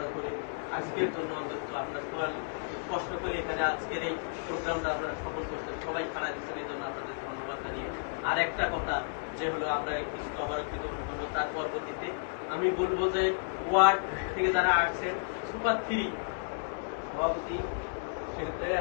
করে আজকের জন্য অন্তত আপনার সবাই কষ্ট করে এখানে আজকের এই প্রোগ্রামটা আপনারা সফল করছেন, সবাই খাড়া দিচ্ছেন, এই জন্য আপনাদের ধন্যবাদ জানিয়ে আর একটা কথা যে হলো আমরা কিছু অবারক্ষিত করবো, তার পরবর্তীতে আমি বলবো যে ওয়ার্ড থেকে যারা আসছেন সুপার 3 সভাপতি সেক্ষেত্রে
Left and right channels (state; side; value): silent; right; 56 dB below the other